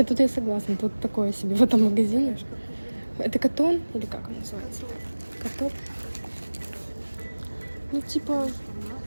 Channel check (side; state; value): both; inverted; correlation -1.00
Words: тут я согласна. Тут такое себе в этом магазине. Это Катон? Или как он называется? Катоп? Ну, типа,